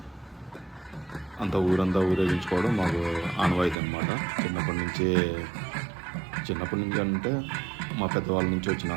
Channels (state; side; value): drops out; left; at 3.8 s